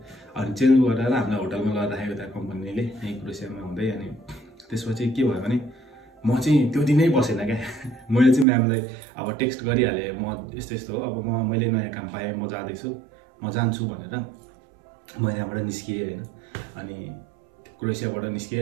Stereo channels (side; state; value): left; drops out; at 8.5 s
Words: अनि चेन्ज गरेर हामीलाई होटलमा लगेर राखेको त्यहाँ कम्पनीले यहीँ क्रोएसियामा हुँदै। अनि त्यसपछि के भयो भने म चाहिँ त्यो दिनै बसेन क्या मैले चाहिँ म्यामलाई अब टेक्स्ट गरिहालेँ म यस्तो हो अब मैले नयाँ काम पाएँ म जाँदैछु म जान्छु भनेर म यहाँबाट निस्किएँ होइन। अनि क्रोएसियाबाट